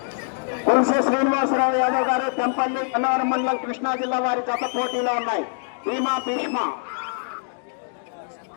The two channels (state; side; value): silent; right; digital silence